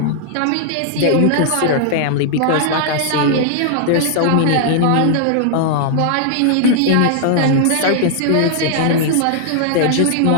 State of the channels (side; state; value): both; different; correlation -0.01